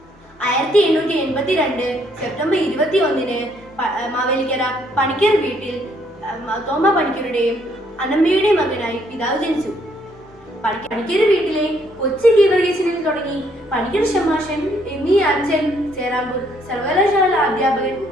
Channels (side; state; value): both; normal; correlation 0.68